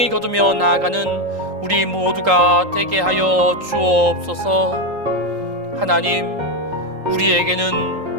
거두며 나아가는 우리 모두가 되게 하여 주옵소서. 하나님,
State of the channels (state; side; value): late; left; 3.8 ms